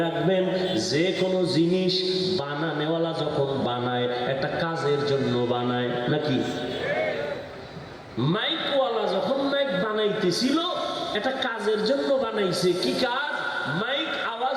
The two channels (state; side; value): identical; both; correlation 1.00